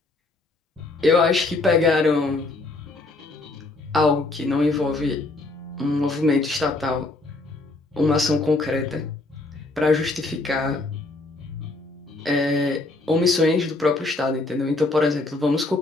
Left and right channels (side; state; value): right; quieter; 3.1 dB